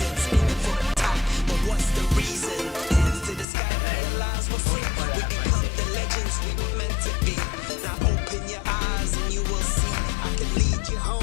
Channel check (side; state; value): right; drops out; at 3.5 s